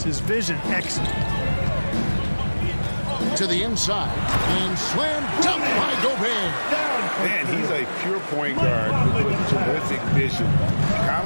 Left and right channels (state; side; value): inverted; both; correlation -1.00